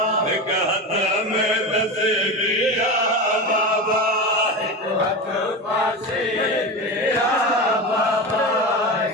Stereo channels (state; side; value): normal; both; correlation 0.23